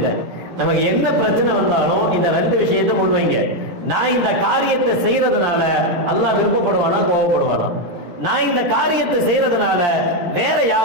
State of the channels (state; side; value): late; left; 17 ms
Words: நமக்கு என்ன பிரச்சனை வந்தாலும் இந்த ரெண்டு விஷயத்தை முன்வைங்க. நான் இந்த காரியத்தை செய்யறதுனால அல்லாஹ் விருப்பப்படுவானா கோபப்படுவானா? நான் இந்த காரியத்தை செய்யறதுனால வேற